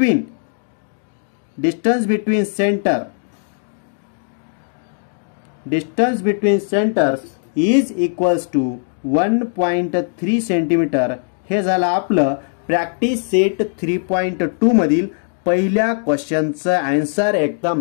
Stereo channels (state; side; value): silent; right; digital silence